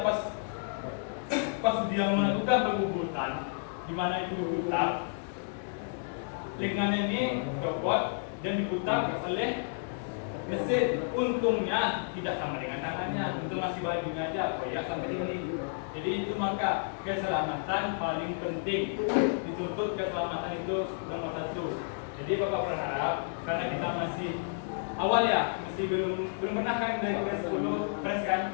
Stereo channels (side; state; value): right; silent; digital silence